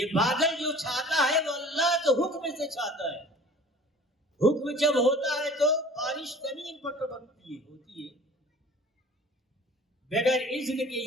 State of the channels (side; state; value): both; normal; correlation 0.46